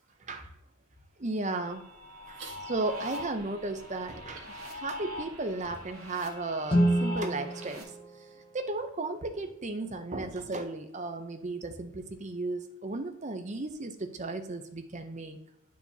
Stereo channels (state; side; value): normal; both; correlation 0.46